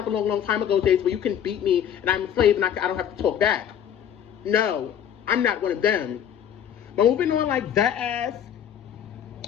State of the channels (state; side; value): quieter; right; 9.3 dB